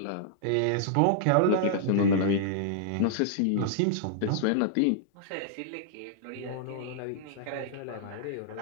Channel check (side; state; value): both; different; correlation -0.02